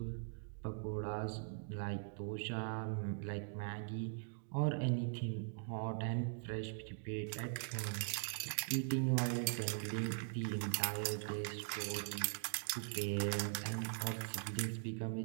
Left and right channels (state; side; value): silent; left; digital silence